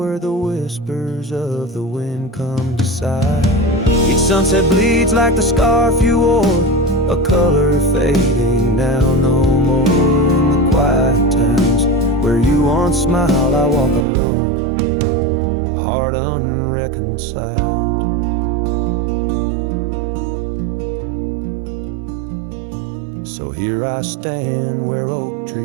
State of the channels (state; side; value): drops out; left; at 14.1 s